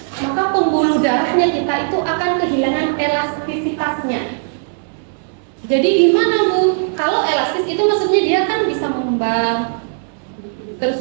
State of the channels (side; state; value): left; silent; digital silence